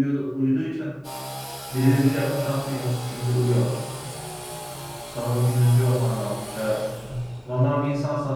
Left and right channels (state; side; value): identical; both; correlation 1.00